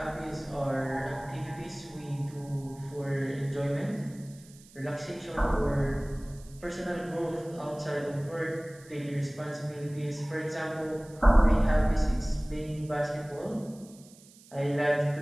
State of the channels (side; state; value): right; noise; hiss, 24 dB below the sound